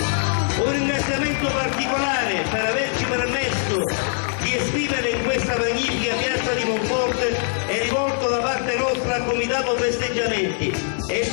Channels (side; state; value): right; silent; digital silence